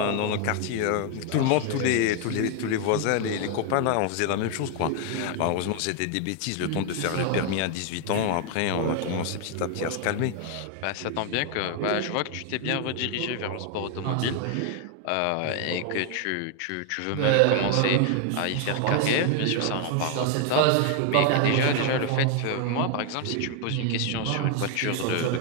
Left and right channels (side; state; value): both; different; correlation 0.00